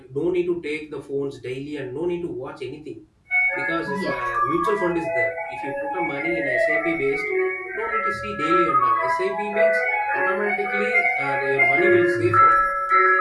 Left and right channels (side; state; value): both; identical; correlation 1.00